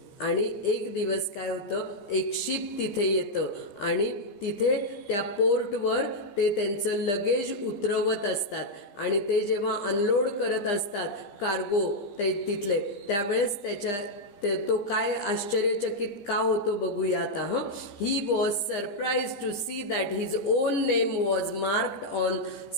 आणि एक दिवस काय होतं, एक शिप तिथे येतं आणि तिथे त्या पोर्टवर ते त्यांचं लगेज उतरवत असतात आणि ते जेव्हा अनलोड करत असतात कार्गो ते तिथले, त्यावेळेस तो काय आश्चर्यचकित का होतो बघूया आता. He was surprise to see that his own name was marked on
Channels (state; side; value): late; right; 15 ms